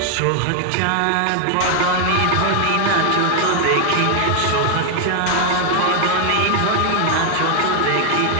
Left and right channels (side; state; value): both; different; correlation 0.00